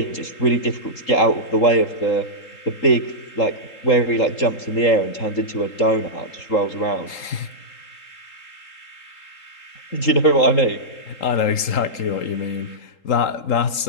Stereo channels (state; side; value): late; right; 3.8 ms